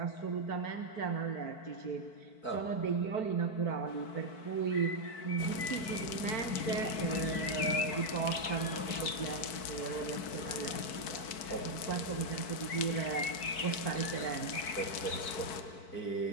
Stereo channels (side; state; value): right; late; 4.5 ms